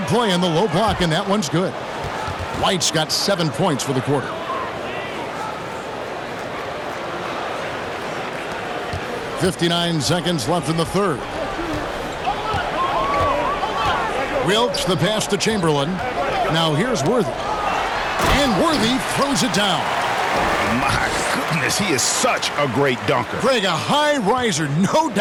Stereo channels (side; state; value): both; identical; correlation 1.00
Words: play in the low block, and that one's good. White's got 7 points for the quarter. .59 seconds left in the third. Wilkes the pass to Chamberlain. Now here's Worthy. And Worthy throws it down. My goodness, he is such a great dunker. Greg, a high riser, no